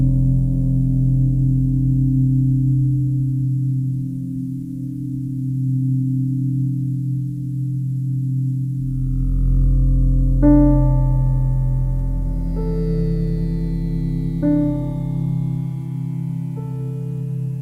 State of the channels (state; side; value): identical; both; correlation 1.00